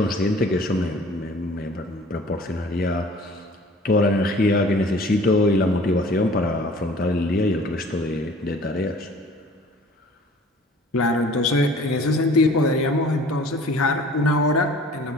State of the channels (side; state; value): both; normal; correlation 0.49